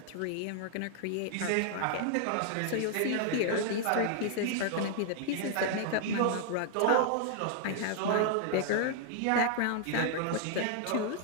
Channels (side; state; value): both; different; correlation 0.00